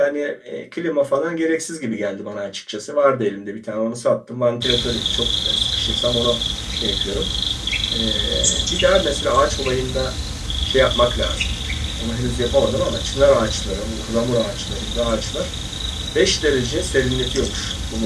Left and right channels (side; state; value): both; identical; correlation 1.00